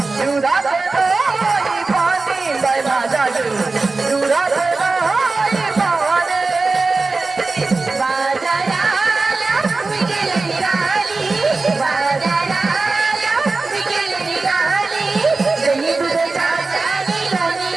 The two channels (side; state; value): left; quieter; 3.7 dB